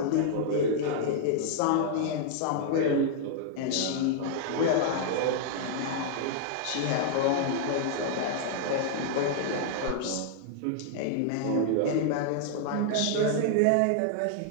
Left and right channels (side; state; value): both; different; correlation -0.01